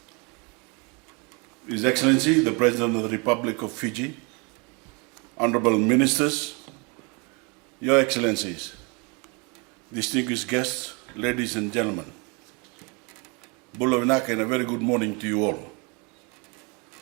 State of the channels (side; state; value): left; quieter; 31.1 dB